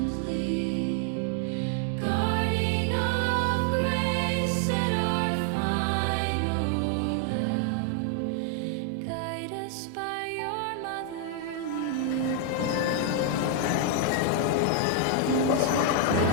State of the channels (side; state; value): both; different; correlation 0.00